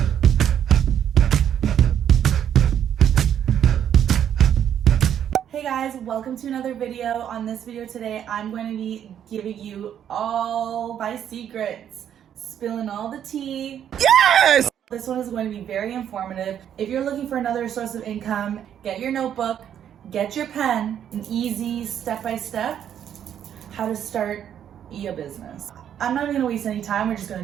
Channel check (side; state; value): left; quieter; 9.5 dB